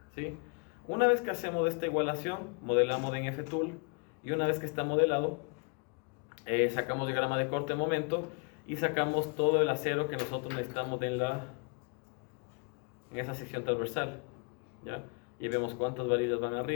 ¿sí? Una vez que hacemos esta igualación, modelamos en F-Tool, y una vez que está modelado, sacamos diagrama de corte de momento y sacamos todo el acero que nosotros necesitamos en esa sección transversal, ¿ya? Y vemos cuántas varillas van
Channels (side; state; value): right; quieter; 33.7 dB